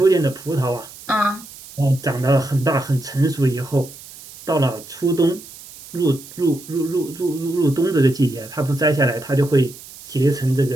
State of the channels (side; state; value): right; noise; hiss, 18 dB below the sound